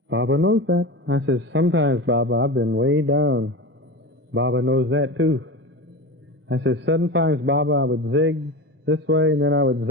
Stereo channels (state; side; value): normal; both; correlation 0.27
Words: Baba knows that. I said, sometimes, Baba, I've been way down. Baba knows that too. I said, sometimes, Baba, I would zig this way, and then I would